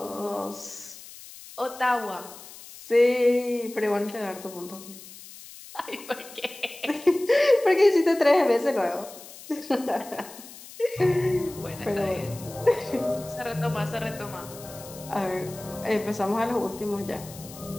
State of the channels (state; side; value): noise; left; hiss, 17 dB below the sound